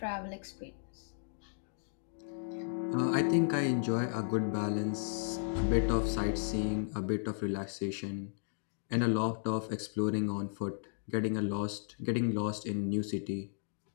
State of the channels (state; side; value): silent; right; digital silence